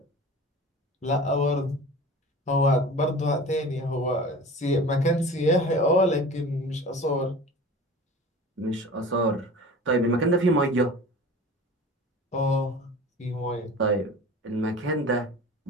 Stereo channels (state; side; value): normal; both; correlation 0.38